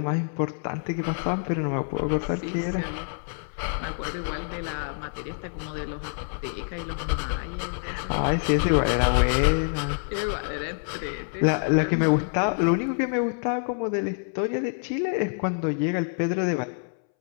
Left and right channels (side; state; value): right; silent; 60 dB below the other